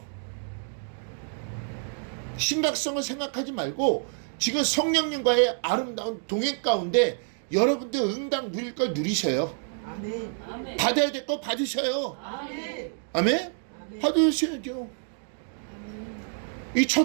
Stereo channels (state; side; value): silent; left; 58 dB below the other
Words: 심각성을 생각하지 말고 지금 성령님과의 아름다운 동행 가운데 여러분들 응당 누릴 걸 누리셔요. 아멘. 아멘. 받아야 될 거 받으셔요. 아멘. 아멘? 아멘. 받으셔야죠. 이